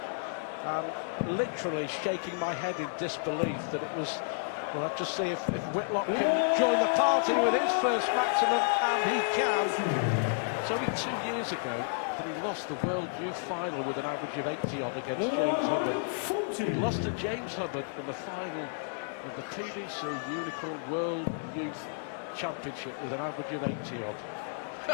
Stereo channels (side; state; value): right; silent; 57 dB below the other